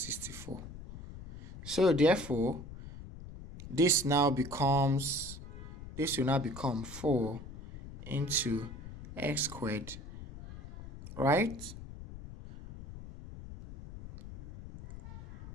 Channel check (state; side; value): noise; left; rumble, 12 dB below the sound